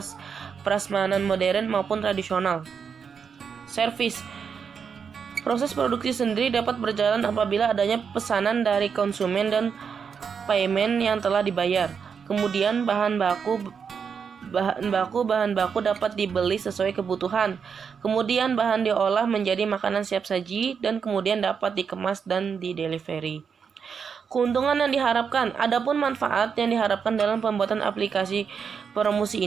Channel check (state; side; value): quieter; left; 6.4 dB